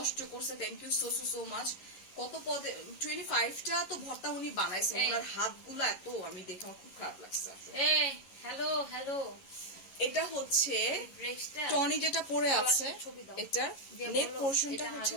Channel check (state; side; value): late; right; 11 ms